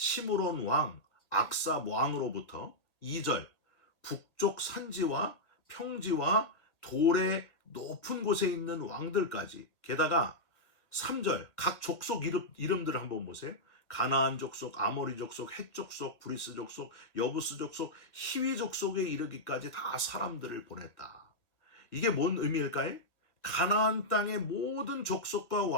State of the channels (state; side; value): late; right; 2.0 ms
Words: 왕, 악삽 왕으로부터 2절 북쪽 산지와 평지와 돌의 높은 곳에 있는 왕들까지, 게다가 3절 각 족속 이름들을 한번 보세요. 가나안 족속, 아모리 족속, 헷 족속, 브리스 족속, 여부스 족속, 히위 족속에 이르기까지 다 사람들을 보냈다. 이게 뭔 의미일까요? 가나안 땅의 모든 족속과